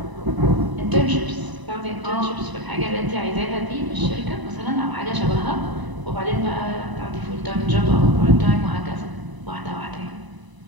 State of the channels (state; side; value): late; left; 1.0 ms